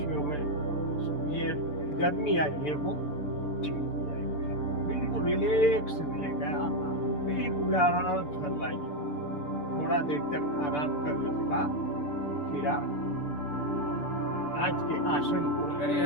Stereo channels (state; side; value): late; right; 6.8 ms